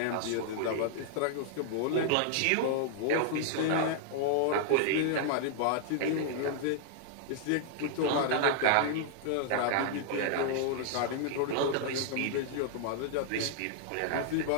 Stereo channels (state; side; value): different; both; correlation -0.01